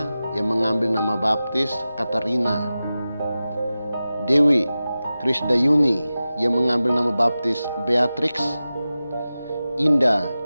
yang mengambil nama baptis Katarina. Dewi Krisdayuni yang mengambil nama baptis Beatrix. Indah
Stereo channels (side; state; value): both; inverted; correlation -0.95